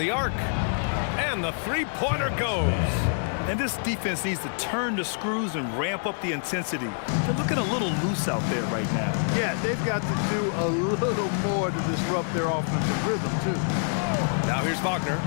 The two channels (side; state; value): right; silent; digital silence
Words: arc. And the three-pointer goes. And this defense needs to turn the screws and ramp up the intensity. They're looking a little loose out there right now. Yeah, they've got to do a little more to disrupt their offensive rhythm, too. Now here's Wagner.